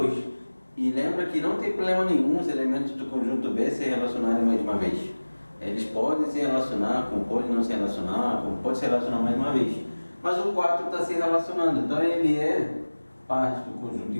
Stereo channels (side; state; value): both; inverted; correlation -1.00